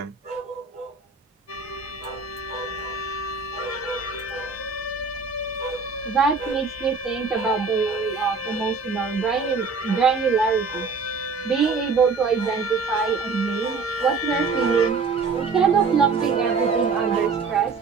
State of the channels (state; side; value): quieter; left; 4.6 dB